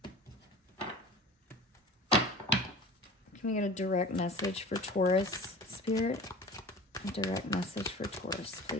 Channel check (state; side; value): normal; both; correlation 0.39